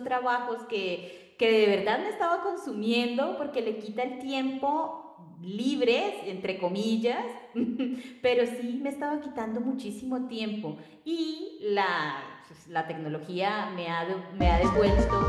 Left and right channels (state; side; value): identical; both; correlation 1.00